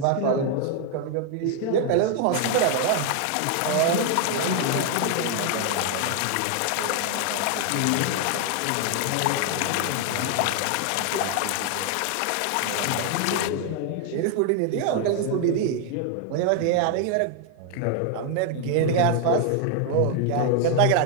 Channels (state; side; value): different; both; correlation 0.00